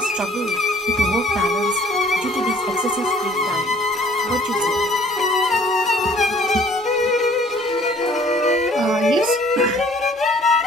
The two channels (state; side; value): normal; both; correlation 0.56